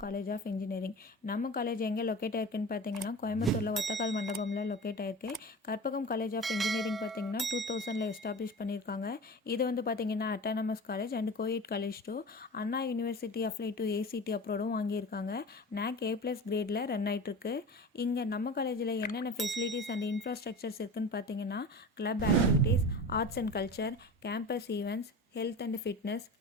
காலேஜ் ஆஃப் இன்ஜினியரிங். நம்ம காலேஜ் எங்கே லொக்கேட் ஆயிருக்குன்னு பார்த்தீங்கன்னா கோயம்புத்தூரில் ஒத்தக்கால் மண்டபமில் லொக்கேட் ஆயிருக்கு. கற்பகம் காலேஜ் ஆஃப் இன்ஜினியரிங் பார்த்தீங்கன்னா 2000 எஸ்டாப்ளிஷ் பண்ணியிருக்காங்க. இது வந்து பார்த்தீங்கன்னா autonomous college and coed college too. Anna university apply to ஏசிடி அப்ரோடும் வாங்கியிருக்காங்க. NAC A+ கிரேடில் ரன் ஆகிட்டுருக்கு. இங்கே நம்ம காலேஜில் என்னென்ன ஃபெசிலிட்டிஸ் அண்ட் இன்ஃப்ராஸ்ட்ரக்சர்ஸ் இருக்குதுன்னு பார்த்தீங்கன்னா club activities, arts and culture, campus events, health and fitness,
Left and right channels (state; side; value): normal; both; correlation 0.33